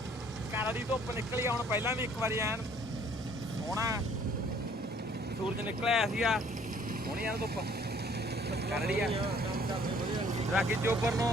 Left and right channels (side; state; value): both; normal; correlation 0.58